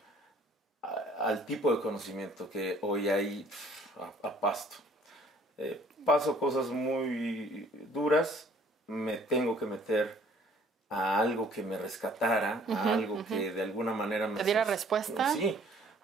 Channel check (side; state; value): both; normal; correlation 0.57